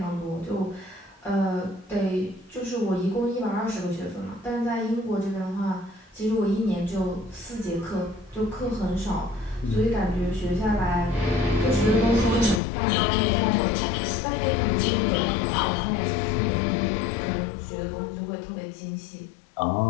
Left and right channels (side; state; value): right; drops out; at 12.6 s